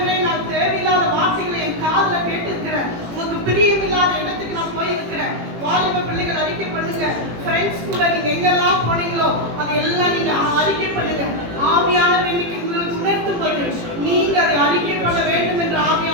நான் தேவையில்லாத வார்த்தைகளை என் காதுல கேட்டிருக்கிறேன், உங்களுக்கு பிரியமில்லாத இடத்துக்கு நான் போயிருக்கிறேன். வாலிப பிள்ளைகள் அறிக்கை பண்ணுங்க. ஃப்ரெண்ட்ஸ் கூட நீங்க எங்கெல்லாம் போனீங்களோ அது எல்லாம் நீங்க அறிக்கை பண்ணுங்க. ஆவியானவர் இன்னைக்கு உங்களுக்கு உணர்த்தும் போது நீங்க அதை அறிக்கை பண்ண வேண்டும் என்று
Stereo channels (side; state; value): left; late; 18 ms